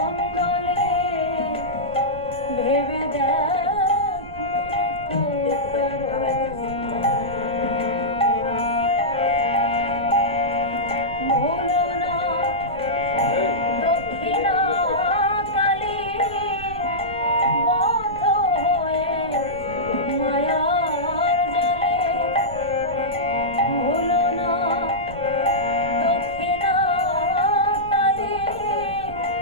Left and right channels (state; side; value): noise; right; rumble, 15 dB below the sound